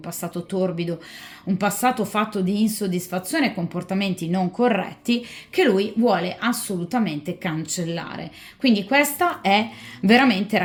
passato torbido, un passato fatto di insoddisfazione e comportamenti non corretti che lui vuole assolutamente cancellare. Quindi questa è veramente,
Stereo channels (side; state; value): both; identical; correlation 1.00